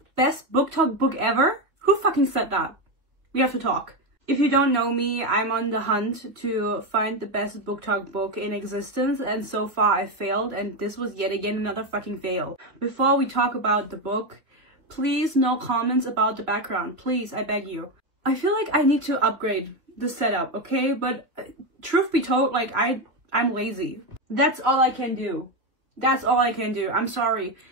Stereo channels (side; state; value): left; late; 3.1 ms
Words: Best booktok book ever? Who fucking said that? We have to talk. If you don't know me, I'm on the hunt to find the best booktok book in existence, and so far I failed, and this was yet again another fucking fail. Before we talk about the book, please no comments about the background. Please, I beg you. I feel like I need to upgrade the setup, okay? But truth be told, like I'm lazy. That's all I can do. That's all I can do. I'm sorry.